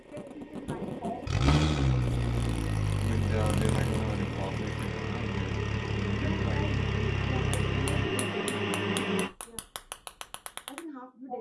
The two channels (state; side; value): identical; both; correlation 1.00